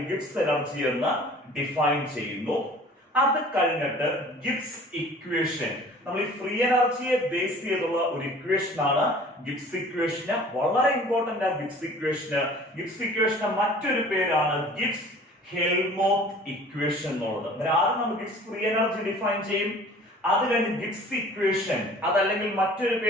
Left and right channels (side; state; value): both; normal; correlation 0.47